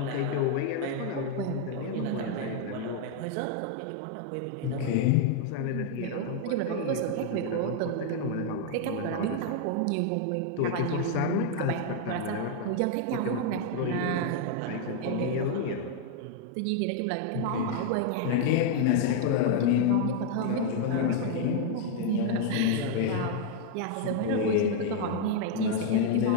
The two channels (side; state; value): both; different; correlation 0.00